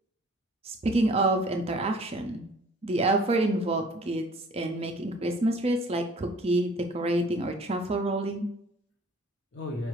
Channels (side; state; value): both; normal; correlation 0.52